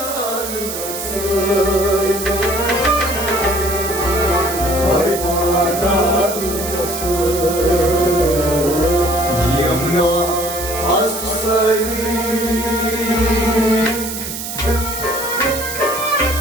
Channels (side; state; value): right; noise; hiss, 7 dB below the sound